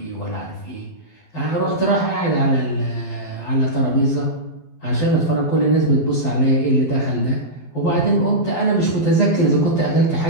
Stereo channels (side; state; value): right; late; 12 ms